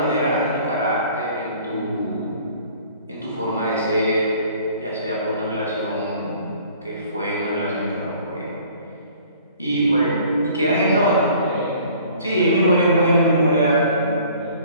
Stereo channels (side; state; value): both; inverted; correlation -0.53